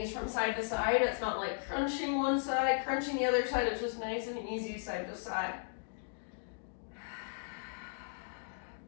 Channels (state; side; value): silent; right; digital silence